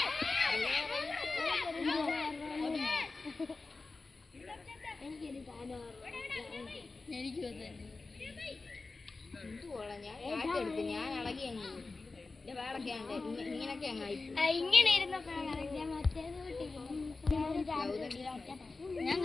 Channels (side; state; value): right; quieter; 3.7 dB